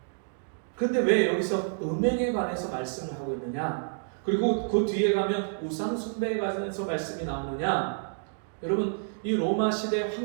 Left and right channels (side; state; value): left; silent; digital silence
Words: 그런데 왜 여기서 음행에 관해서 말씀을 하고 있느냐? 그리고 그 뒤에 가면 우상 숭배에 관해서 말씀이 나오느냐? 여러분, 이 로마 시대